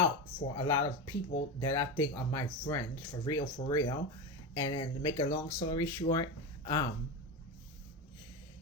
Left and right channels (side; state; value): both; normal; correlation 0.19